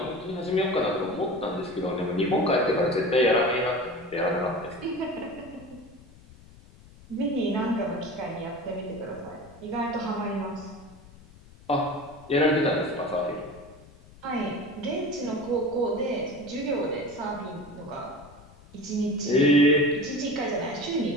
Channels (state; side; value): noise; left; rumble, 22 dB below the sound